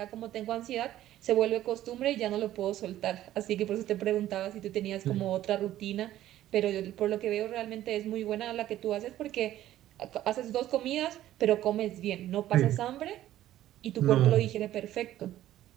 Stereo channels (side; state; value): left; quieter; 13.4 dB